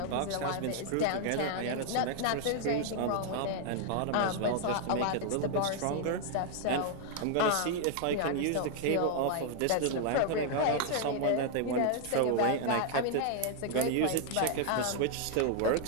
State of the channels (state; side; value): different; both; correlation 0.00